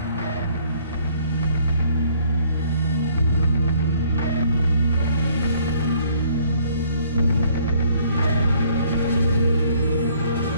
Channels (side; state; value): both; inverted; correlation -0.61